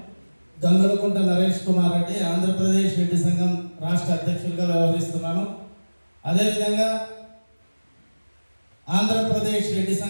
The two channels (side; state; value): both; inverted; correlation -1.00